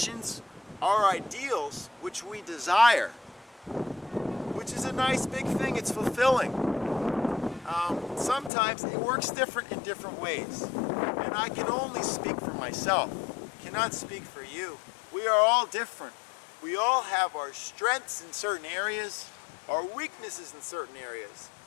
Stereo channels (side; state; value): right; drops out; at 8.5 s